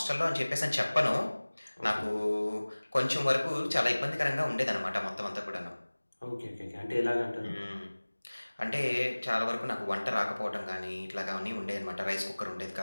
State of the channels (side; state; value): both; inverted; correlation -1.00